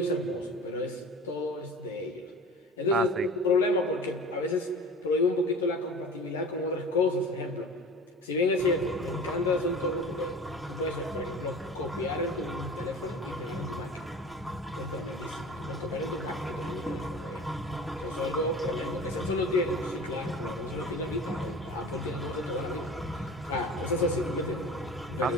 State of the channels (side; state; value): both; normal; correlation 0.38